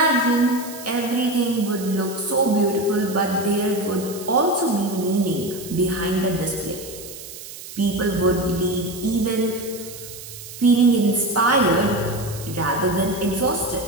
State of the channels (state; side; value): noise; right; hiss, 14 dB below the sound